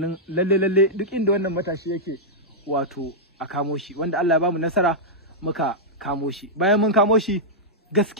lalle duk inda wannan matashi yake wato a kamo shi, wanda Allah ya bamu nasara muka kamo shi. Bayan mun kamo shi,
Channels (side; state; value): both; normal; correlation -0.08